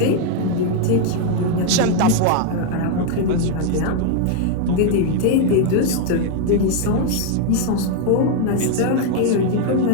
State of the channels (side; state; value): both; different; correlation 0.00